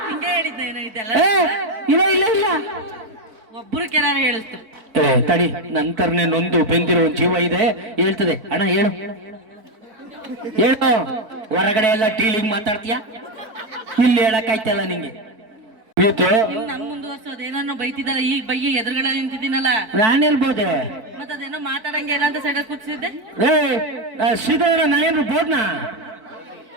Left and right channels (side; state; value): left; late; 4.5 ms